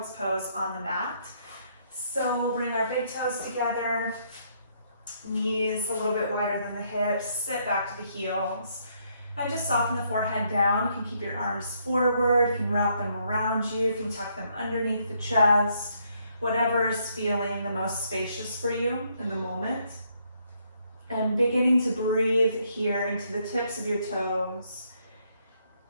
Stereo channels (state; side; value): inverted; both; correlation -0.72